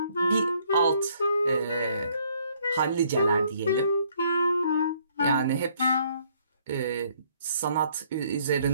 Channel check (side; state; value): both; inverted; correlation -0.65